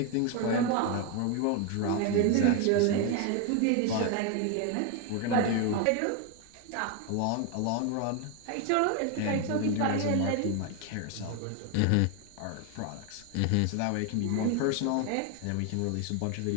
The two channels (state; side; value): different; both; correlation 0.01